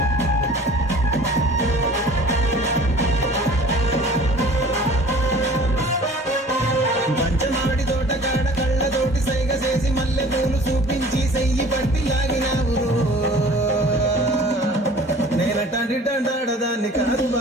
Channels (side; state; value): both; normal; correlation 0.47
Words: పంచమాడి తోటకాడ కళ్ళతోటి సైగ చేసి మల్లె పూలు చూపించి సెయ్యి పట్టి లాగినావు నేనటంటి దండాడదాన్ని కాదు